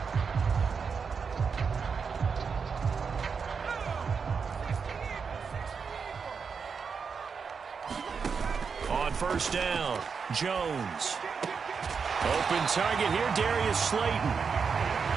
On first down, Jones. Open target here, Darius Slayton.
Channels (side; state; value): left; quieter; 5.8 dB